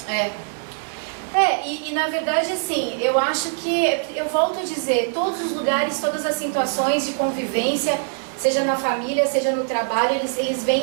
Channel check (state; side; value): silent; left; digital silence